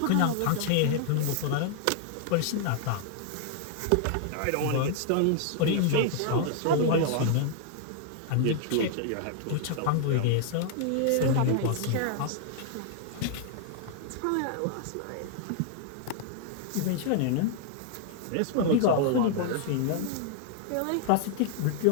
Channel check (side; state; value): both; different; correlation -0.01